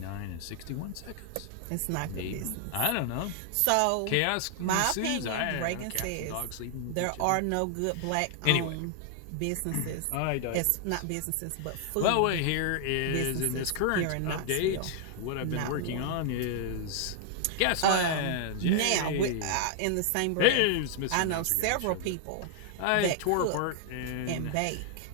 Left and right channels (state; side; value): different; both; correlation 0.00